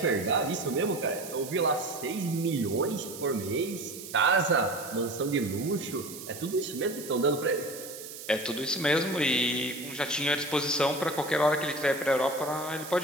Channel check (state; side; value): noise; right; hiss, 12 dB below the sound